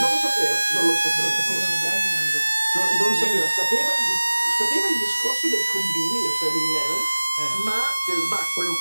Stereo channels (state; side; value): inverted; both; correlation -1.00